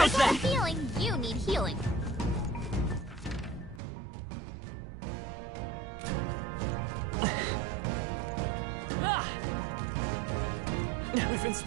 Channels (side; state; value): left; drops out; at 3.8 s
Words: I got a that? feeling you need healing. We've been